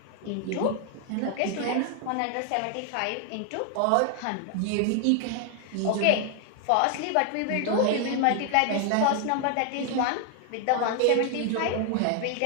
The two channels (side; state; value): both; different; correlation 0.00